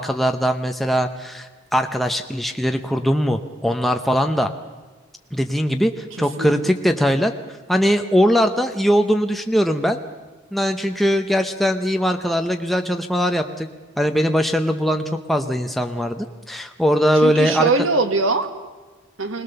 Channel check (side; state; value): both; normal; correlation 0.79